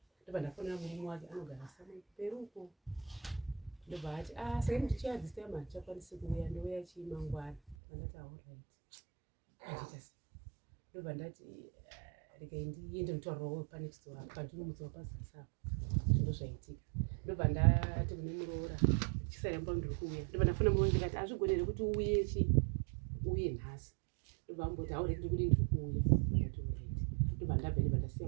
ndobva ndafonera murume wake anogara samai peruko ndobva ati saka ndichiya this time handikwanisi kuuya ndouya chii mangwana ndandati alright andita sei ndobva ndati regai ndiende mutaurirawo panext door pandinomutswa pazasi zvinhu zvaitika ndobva ndati kune muroora chisaramba ndiri kuuya ndobva ndafona muroora ndikati azvigonere kuti uye nhasi ndobva amboti haureki ndikudi ndiri kuuya ndati alright ndobva ndabva ndasiya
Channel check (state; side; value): drops out; left; at 7.8 s